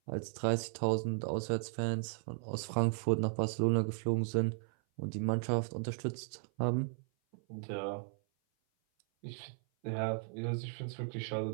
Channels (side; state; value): left; silent; 54 dB below the other